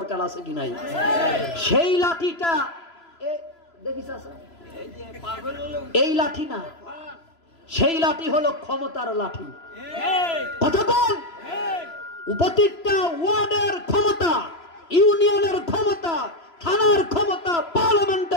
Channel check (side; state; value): right; late; 3.0 ms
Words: আছে কি নাই? সেই লাঠিটা দেখিস, এই লাঠি না, সেই লাঠি হলো ক্ষমতার লাঠি। কতক্ষণ উপত্যকা ওয়ার্ডের ক্ষমতা, ইউনিয়নের ক্ষমতা, থানার ক্ষমতা,